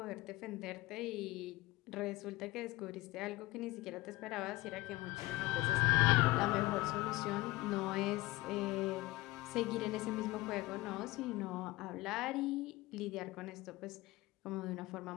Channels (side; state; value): right; quieter; 20.2 dB